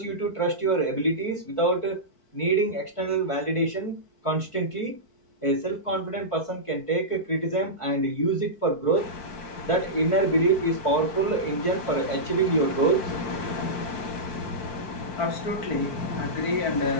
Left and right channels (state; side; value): late; right; 4.6 ms